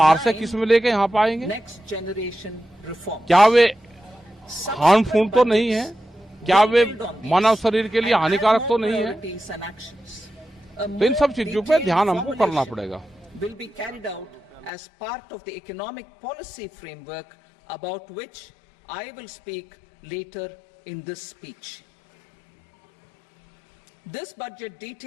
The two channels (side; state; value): right; drops out; at 14.7 s